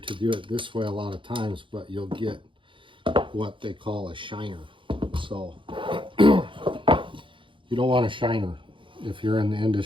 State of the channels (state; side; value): late; left; 0.24 ms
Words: do it this way a lot of times, but you'll get what they call a shiner. So you don't want a shiner. If you're in the